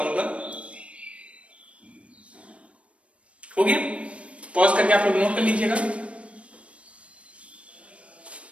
हो गया? पॉज करके आप लोग नोट कर लीजिएगा।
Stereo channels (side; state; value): left; late; 0.062 ms